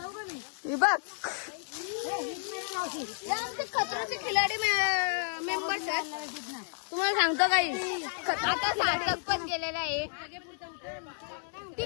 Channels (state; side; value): silent; right; digital silence